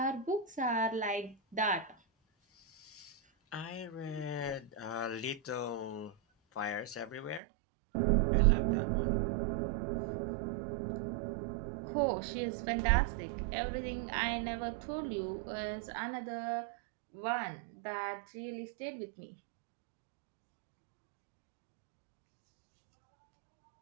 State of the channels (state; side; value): drops out; left; at 7.4 s